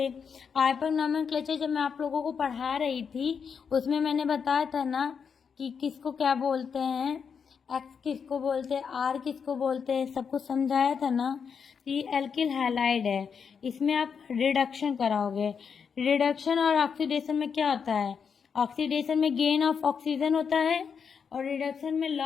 आइपक नोमेनक्लेचर जब मैं आप लोगों को पढ़ा रही थी उसमें मैंने बताया था ना कि किसको क्या बोलते हैं, एक्स किसको बोलते हैं, आर किसको बोलते हैं, सब कुछ समझाया था ना। ये एल्किल हैलाइड है, इसमें आप रिडक्शन कराओगे। रिडक्शन और ऑक्सीडेशन में क्या होता है, ऑक्सीडेशन में गेन ऑफ ऑक्सीजन होता है और रिडक्शन में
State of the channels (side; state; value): right; quieter; 6.5 dB